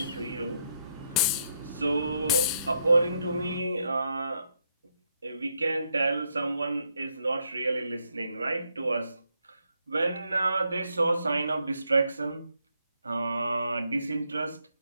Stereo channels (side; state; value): both; inverted; correlation -0.77